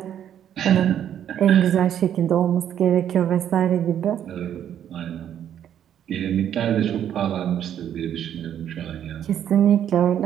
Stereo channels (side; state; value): left; quieter; 10.0 dB